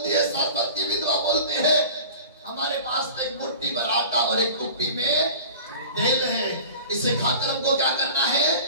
है, सारपत की विधवा बोलती है, हमारे पास तो एक मुट्ठी भर आटा और एक कुप्पी में तेल है, इसे खाकर हमको क्या करना है?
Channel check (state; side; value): inverted; both; correlation -0.39